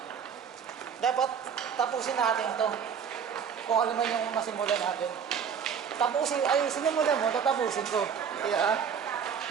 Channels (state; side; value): quieter; left; 7.3 dB